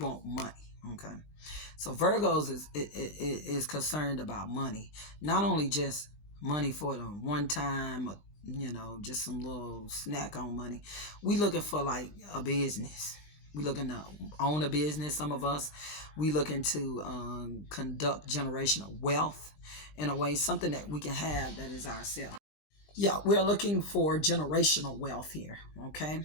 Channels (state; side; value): late; right; 20 ms